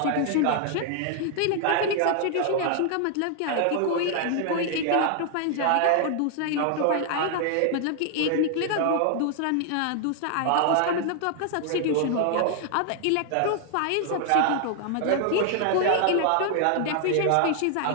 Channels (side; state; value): both; different; correlation 0.00